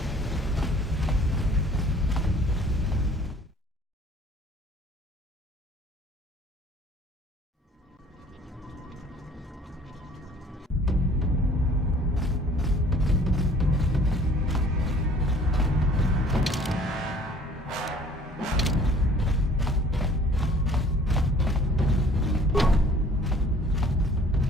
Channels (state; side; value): normal; both; correlation 0.53